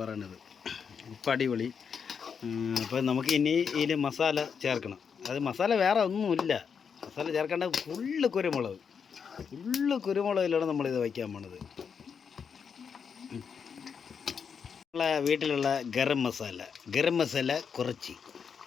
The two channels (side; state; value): right; quieter; 6.6 dB